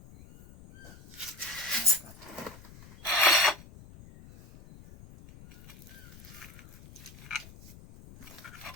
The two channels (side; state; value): left; noise; rumble, 19 dB below the sound